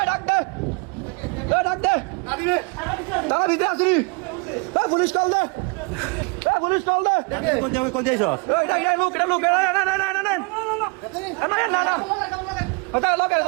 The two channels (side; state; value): left; quieter; 31.6 dB